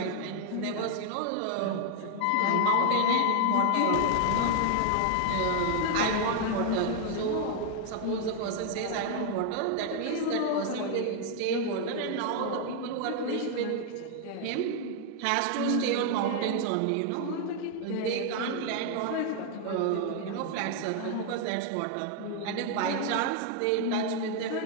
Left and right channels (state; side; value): different; both; correlation 0.00